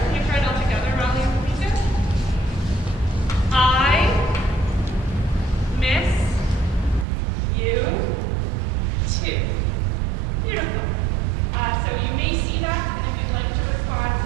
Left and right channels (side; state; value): left; drops out; at 7.1 s